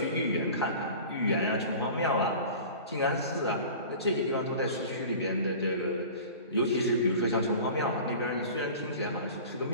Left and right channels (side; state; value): both; inverted; correlation -0.39